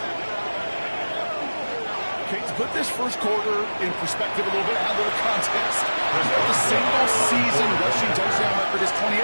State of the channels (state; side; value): inverted; both; correlation -1.00